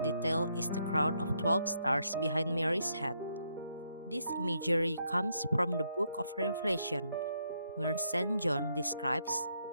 is the crown of 12 stars behind Mary's head. This imagery comes from the book of Revelation, where St. John describes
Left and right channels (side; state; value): both; inverted; correlation -0.76